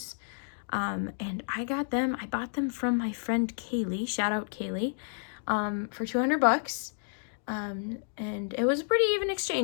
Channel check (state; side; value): silent; right; digital silence